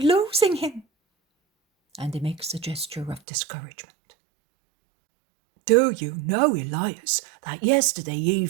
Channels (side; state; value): left; drops out; at 3.2 s